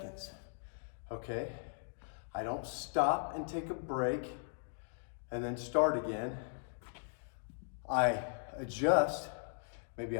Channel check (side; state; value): right; silent; digital silence